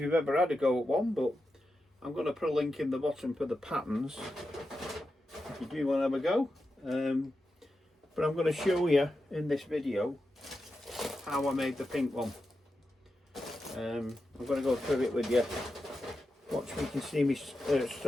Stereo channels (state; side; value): normal; both; correlation 0.89